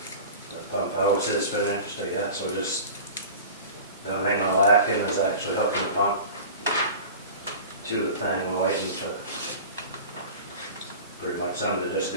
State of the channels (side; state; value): both; inverted; correlation -0.36